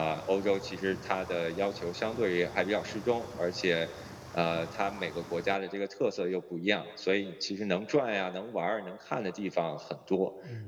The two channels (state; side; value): identical; both; correlation 1.00